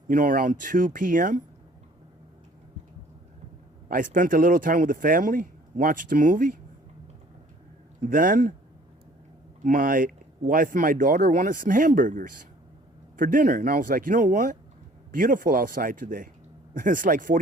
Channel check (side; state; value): both; normal; correlation 0.55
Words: around 2 p.m., I spent a little time with the family, watched a movie. Then my wife and my daughter wanted some hamburgers for dinner. And I was like, you know what? Beautiful outside today. It's like